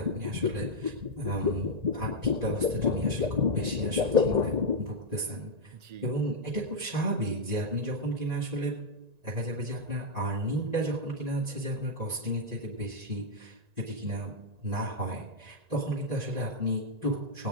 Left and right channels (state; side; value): late; left; 1.9 ms